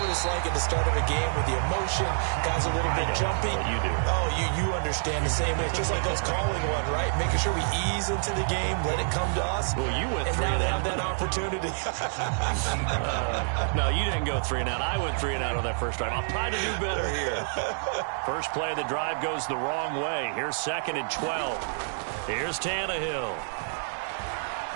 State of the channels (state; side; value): silent; left; digital silence